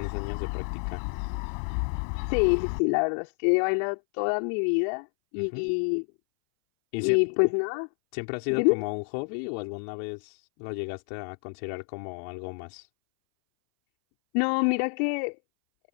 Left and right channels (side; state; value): right; silent; 59 dB below the other